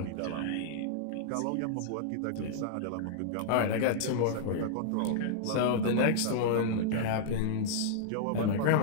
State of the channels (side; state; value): both; different; correlation -0.01